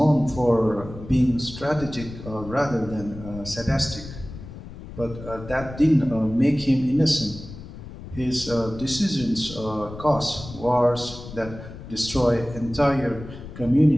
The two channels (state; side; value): noise; left; rumble, 13 dB below the sound